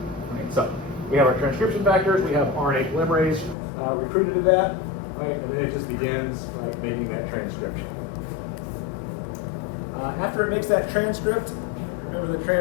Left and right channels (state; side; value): drops out; right; at 3.6 s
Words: Right? So we have our transcription factors. We have RNA polymerase recruited to that, right? And then it just begins, right, making that transcription. After it makes that transcript, remember the